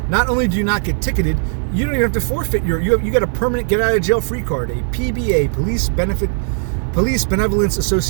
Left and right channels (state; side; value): silent; left; digital silence